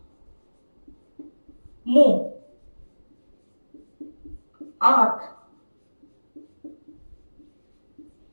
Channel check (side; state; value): both; inverted; correlation -1.00